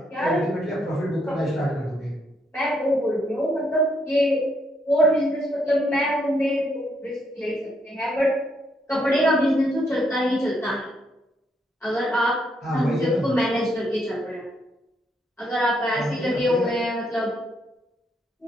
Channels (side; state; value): both; normal; correlation 0.74